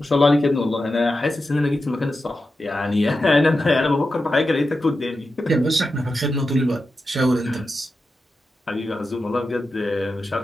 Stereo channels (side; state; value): both; normal; correlation 0.91